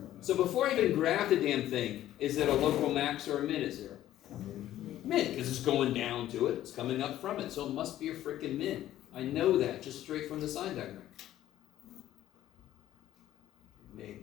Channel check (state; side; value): quieter; right; 13.2 dB